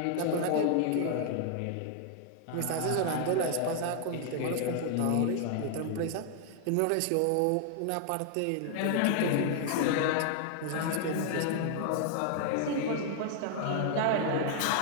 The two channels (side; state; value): both; different; correlation 0.00